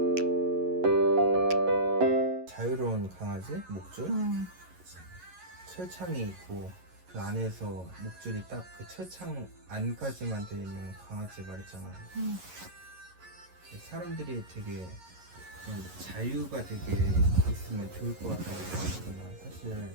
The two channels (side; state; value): left; late; 11 ms